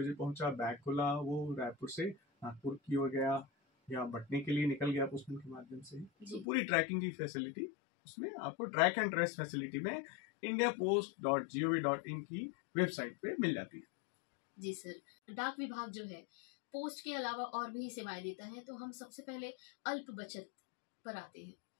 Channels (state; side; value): drops out; right; at 6.5 s